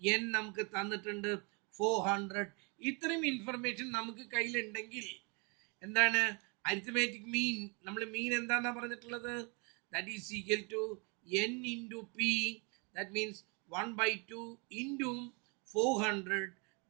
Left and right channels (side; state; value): left; quieter; 32.4 dB